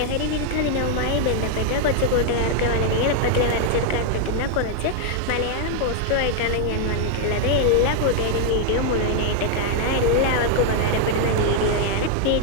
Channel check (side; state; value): both; different; correlation 0.00